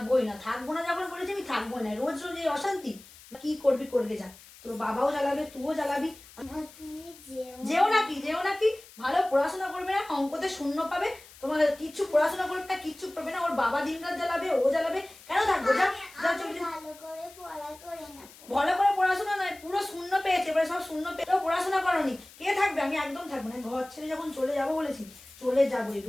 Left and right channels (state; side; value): noise; left; hiss, 21 dB below the sound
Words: না যখন বলেছি আমি থাকবোই না, রোজ রোজ এই অশান্তি। কি করবি করবে যা, তোর বাবাও জ্বালাবে তুইও জ্বালাবি। যেও নাকি ভালো পড়াশোনা করবে না, অঙ্কতে শূন্য পাবে, তোমার কিচ্ছু পড়াশোনা করবে না, কিচ্ছু করবে না, ওর বাবা দিনরাত জ্বালাবে, ও জ্বালাবে, কেন থাকবো? যা যা চলে যা। ভালো করে পড়াশোনা নয়, পুরো শূন্য পেয়েছে, এবারে সব শূন্য পেয়ে পড়াশোনা করনি, কে থাকবে? আমি একদম থাকবো না, ঘর ছেড়ে যখন চলে যাবো বলেছি চলে যাবোই,